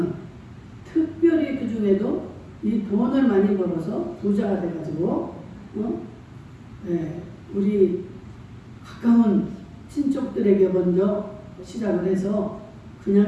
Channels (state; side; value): identical; both; correlation 1.00